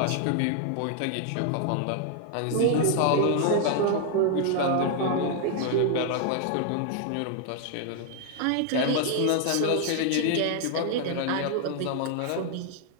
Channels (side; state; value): both; different; correlation 0.00